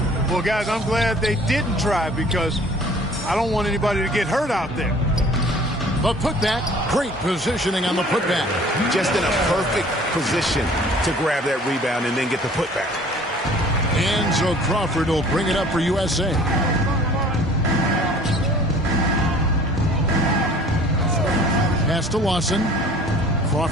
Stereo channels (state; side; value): normal; both; correlation 0.50